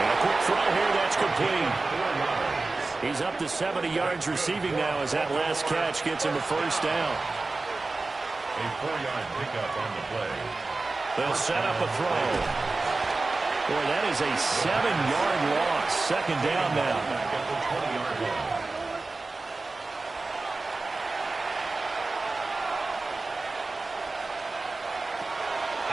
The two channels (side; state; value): left; quieter; 3.5 dB